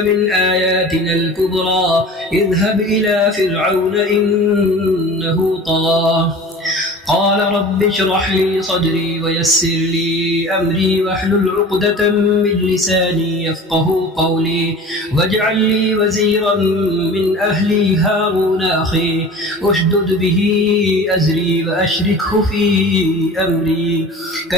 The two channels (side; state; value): both; normal; correlation 0.39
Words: آياتنا الكبرى اذهب إلى فرعون إنه طغى قال رب اشرح لي صدري ويسر لي أمري واحلل عقدة من لساني يفقه قولي واجعل لي وزيرا من أهلي هارون أخي اشدد به أزري وأشركه في أمري